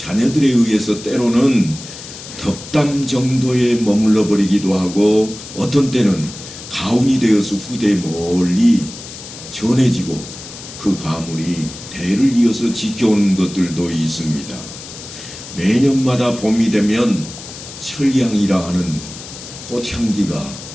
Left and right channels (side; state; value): left; noise; hiss, 13 dB below the sound